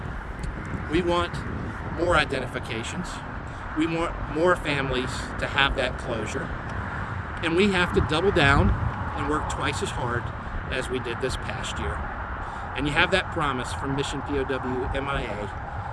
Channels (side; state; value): both; identical; correlation 1.00